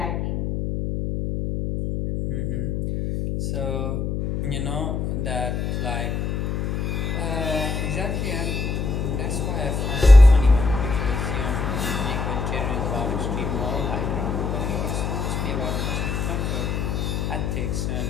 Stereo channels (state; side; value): noise; left; hum, 1 dB below the sound